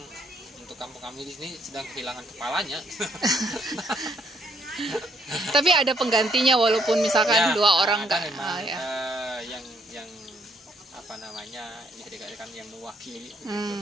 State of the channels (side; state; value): both; normal; correlation 0.68